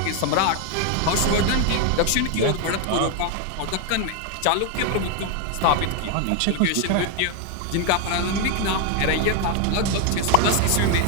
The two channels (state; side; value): different; both; correlation 0.01